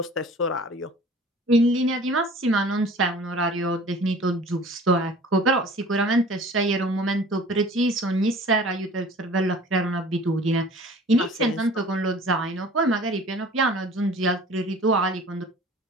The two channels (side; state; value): both; normal; correlation 0.46